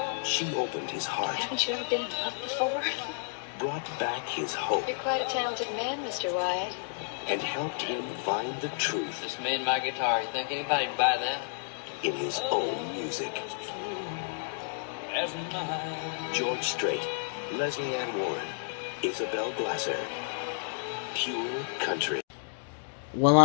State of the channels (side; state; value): right; silent; digital silence